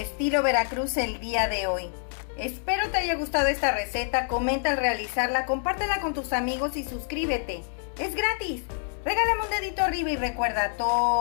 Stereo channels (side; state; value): right; silent; digital silence